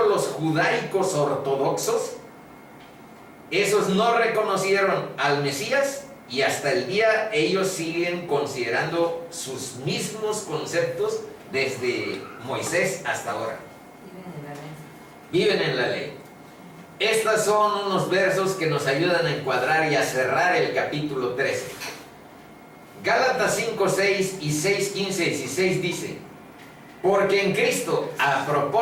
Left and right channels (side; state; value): both; identical; correlation 1.00